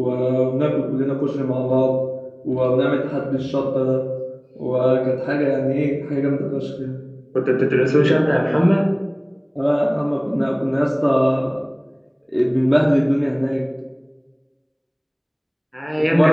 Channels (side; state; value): both; identical; correlation 1.00